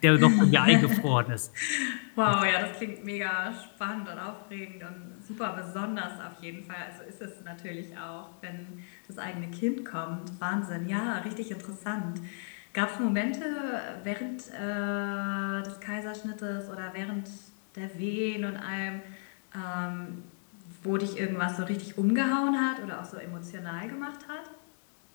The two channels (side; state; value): right; silent; digital silence